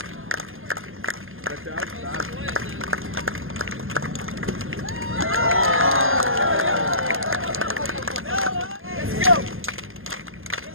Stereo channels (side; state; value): left; late; 0.59 ms